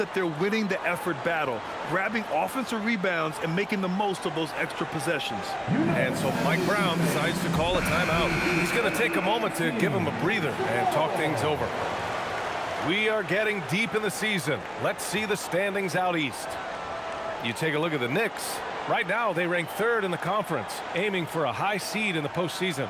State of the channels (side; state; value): both; identical; correlation 1.00